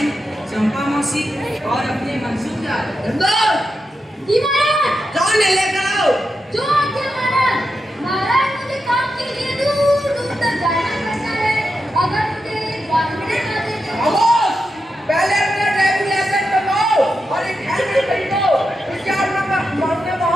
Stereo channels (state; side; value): normal; both; correlation 0.88